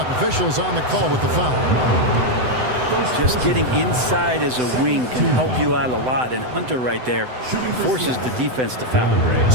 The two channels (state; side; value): late; left; 7.9 ms